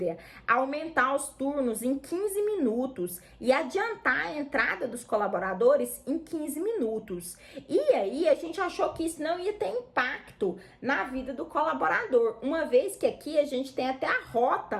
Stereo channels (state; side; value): identical; both; correlation 1.00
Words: aumentar os turnos em 15 minutos e adiantar a entrada dos colaboradores em 15 minutos. E aí, a gente achou que isso não ia ter impacto na vida do colaborador, uma vez que aqui a gente tem até a